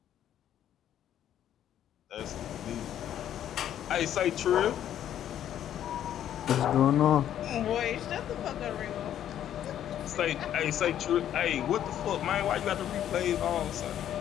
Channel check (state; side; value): quieter; right; 10.8 dB